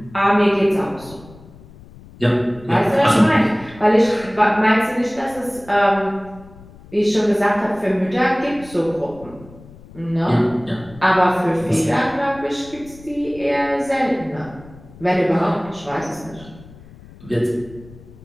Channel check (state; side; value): noise; left; rumble, 21 dB below the sound